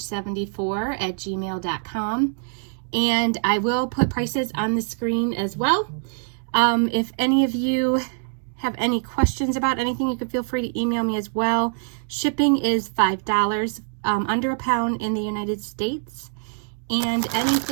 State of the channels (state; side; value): silent; left; 63 dB below the other